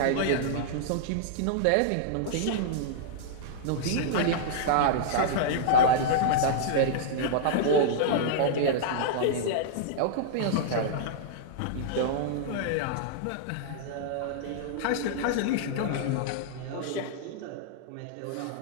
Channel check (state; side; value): different; both; correlation -0.02